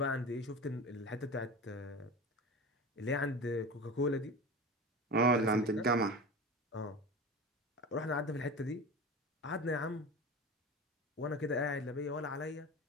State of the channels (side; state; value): both; normal; correlation 0.30